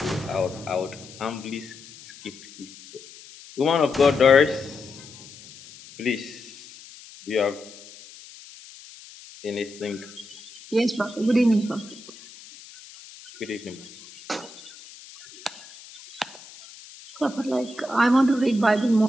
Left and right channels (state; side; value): noise; left; hiss, 19 dB below the sound